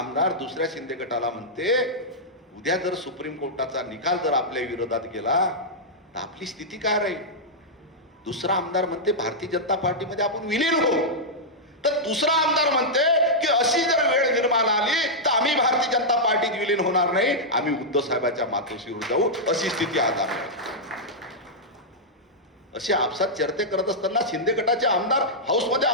दुसऱ्या शिंदे गटाला म्हणते उद्या जर सुप्रीम कोर्टाचा निकाल जर आपल्या विरोधात गेला तर आपली स्थिती काय राहील? दुसरा आमदार म्हणते भारतीय जनता पार्टीमध्ये आपण विलीन होऊ, तर दुसरा आमदार म्हणते की अशी जर वेळ निर्माण आली तर आम्ही भारतीय जनता पार्टीत विलीन होणार नाही, आम्ही उद्धव साहेबांच्या मातोश्रीवर जाऊ. अशी स्थिती आज आहे. असे आपसात चर्चा करत असताना शिंदे गटाचे आमदार हाऊसमध्ये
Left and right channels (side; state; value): both; normal; correlation -0.08